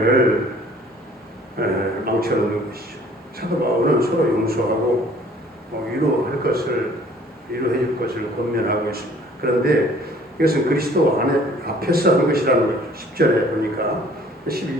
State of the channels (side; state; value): both; normal; correlation 0.54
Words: 망쳐놓는 것이죠. 사도 바울은 서로 용서하고 위로해 줄 것을 권면하고 있습니다. 그런데 이것은 그리스도 앞에서 하는 것이라는 거죠. 10절에 보니까